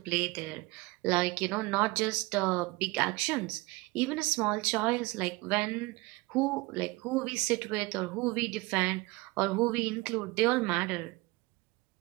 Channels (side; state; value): left; quieter; 23.2 dB